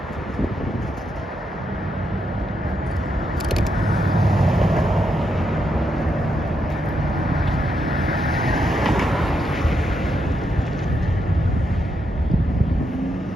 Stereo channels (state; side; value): normal; both; correlation 0.81